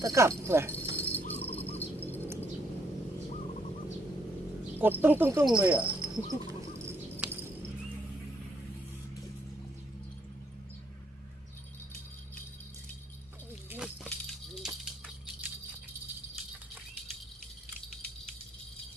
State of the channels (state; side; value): normal; both; correlation 0.71